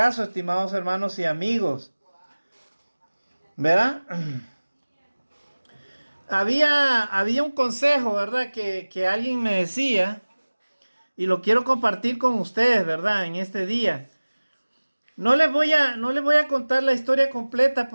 estimados hermanos y amigos. ¿Verdad? Había un consejo, ¿verdad? Que alguien me decía, y lo quiero compartir con ustedes, ¿verdad? En este día. No les voy a contar la historia completa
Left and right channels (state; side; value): inverted; both; correlation -1.00